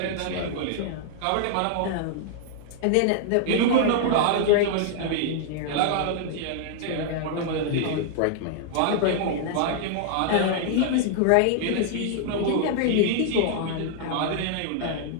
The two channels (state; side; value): different; both; correlation -0.01